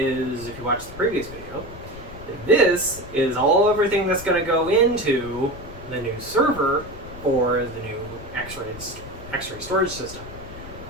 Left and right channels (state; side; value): noise; left; rumble, 14 dB below the sound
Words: if you watched the previous video, this is everything that's going to go into the new server for the new X-ray storage system.